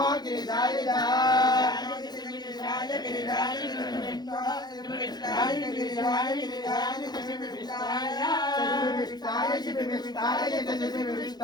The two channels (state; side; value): late; right; 0.20 ms